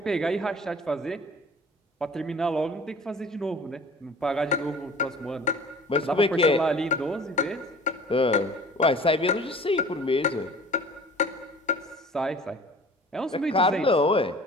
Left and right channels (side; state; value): both; normal; correlation 0.45